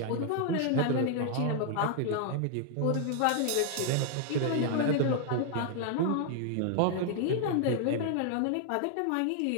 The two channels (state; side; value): different; both; correlation 0.00